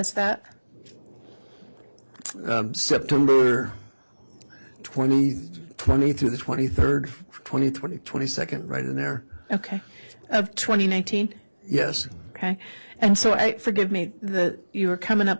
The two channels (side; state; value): both; inverted; correlation -1.00